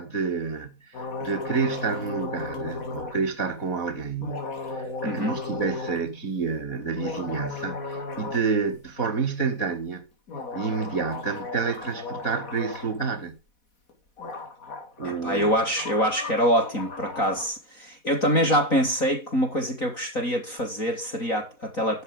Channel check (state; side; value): late; right; 4.1 ms